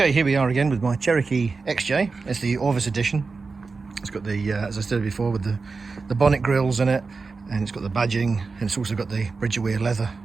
here we are again with my Cherokee XJ. It's the ORVIS edition. It's got the, as I said before, with the bonnet grills in it, and it's got the badging, and it's also got the bridge-wear leather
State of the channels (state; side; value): quieter; left; 4.3 dB